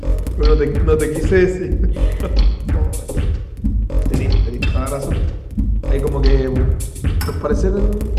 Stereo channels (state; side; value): identical; both; correlation 1.00